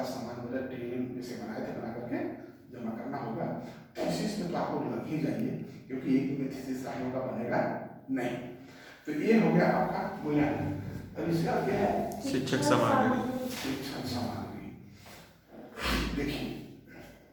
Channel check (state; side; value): identical; both; correlation 1.00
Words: सामान मतलब ट्रेनिंग जैसे बनाए थे बना करके जमा करना होगा। थीसिस में तो आप लोग लग ही जाइए क्योंकि एक में थीसिस आप लोगों का बनेगा नहीं। तो ये हो गया आपका मूल्यांकन। अब इसका क्या है, शिक्षक सामग्री। शिक्षण सामग्री। देखिए